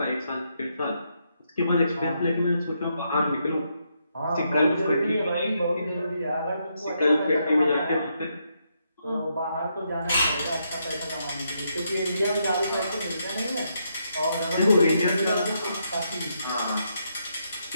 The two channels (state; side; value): inverted; both; correlation -0.79